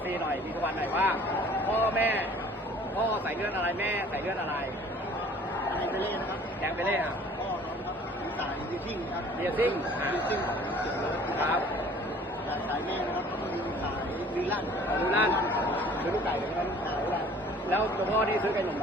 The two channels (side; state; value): both; normal; correlation 0.51